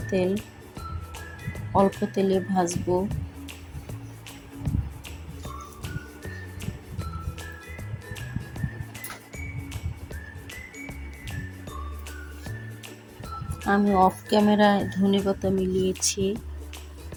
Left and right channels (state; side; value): identical; both; correlation 1.00